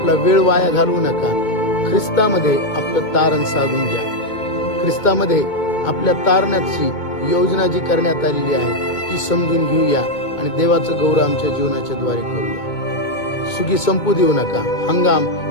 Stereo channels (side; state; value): right; late; 2.2 ms